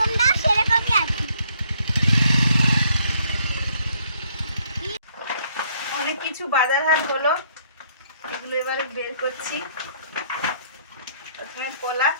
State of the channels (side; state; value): both; inverted; correlation -0.67